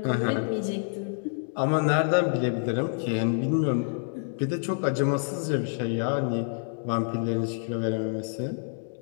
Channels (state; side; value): silent; right; digital silence